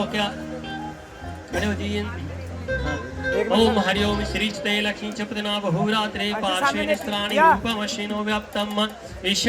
क्या खड़े हो जाइए। हाँ। ओम हरिओम श्रीचते लक्ष्मी चपदना बहुरात्रे पार्श्वे निस्त्राणि रूपमश्विनो व्याप्तम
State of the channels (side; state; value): both; identical; correlation 1.00